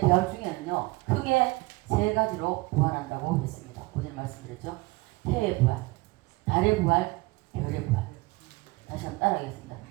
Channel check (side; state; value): left; quieter; 23.3 dB